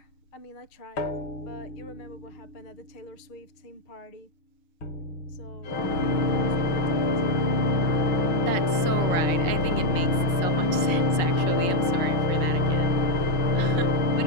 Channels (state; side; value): late; right; 5.4 ms